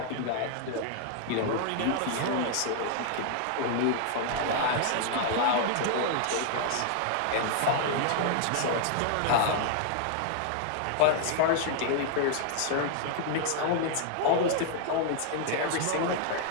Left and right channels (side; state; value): both; different; correlation 0.00